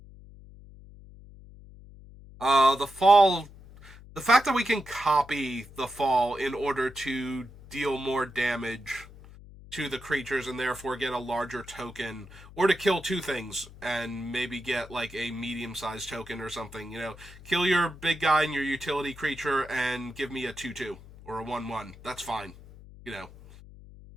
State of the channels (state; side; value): noise; left; hum, 19 dB below the sound